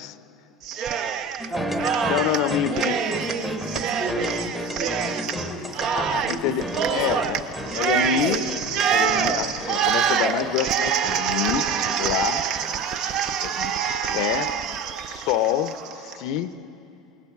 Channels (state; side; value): normal; both; correlation 0.33